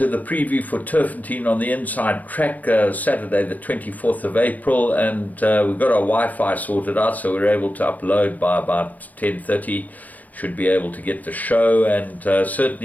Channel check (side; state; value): right; late; 0.078 ms